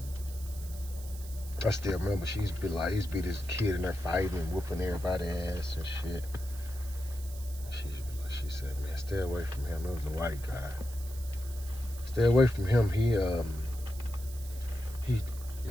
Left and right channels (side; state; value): right; noise; hiss, 16 dB below the sound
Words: I still remember she used to be this kid in there fighting and whooping everybody's ass and shit. She said, man, stay away from him. It was a white guy. Stay away from him. He